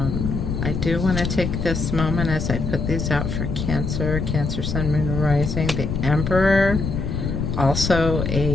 I do want to take this moment as I put these out for Cancer, Cancer, Sun, Moon, Rising. The Emperor, also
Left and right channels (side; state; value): left; noise; rumble, 2 dB below the sound